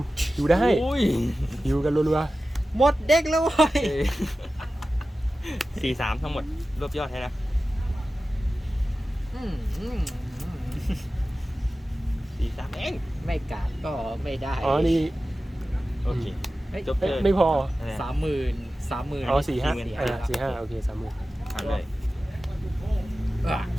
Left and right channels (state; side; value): normal; both; correlation 0.95